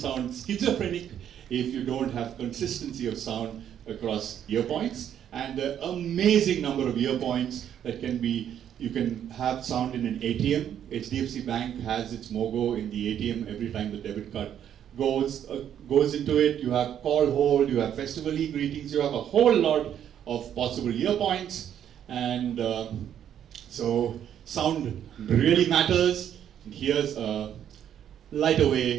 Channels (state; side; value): quieter; left; 9.7 dB